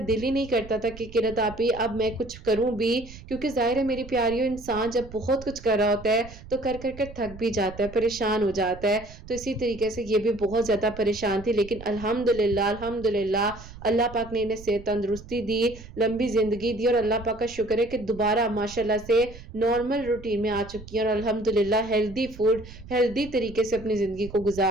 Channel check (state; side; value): noise; right; rumble, 16 dB below the sound